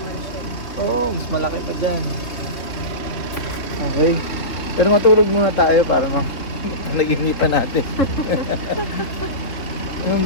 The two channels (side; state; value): right; late; 3.4 ms